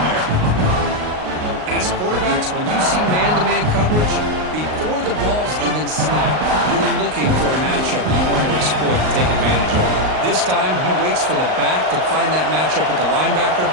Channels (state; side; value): late; left; 38 ms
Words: there. As quarterbacks, when you see man-to-man coverage, before the ball's even snapped, you're looking for a matchup you want to exploit and take advantage of. This time, he waits for the back to find that matchup with the linebacker,